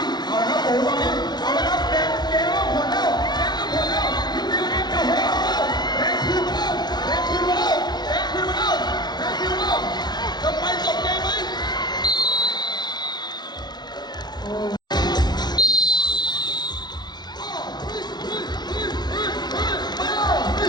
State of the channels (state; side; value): late; right; 0.20 ms